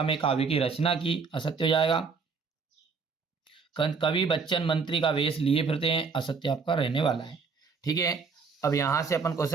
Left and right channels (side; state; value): left; quieter; 5.1 dB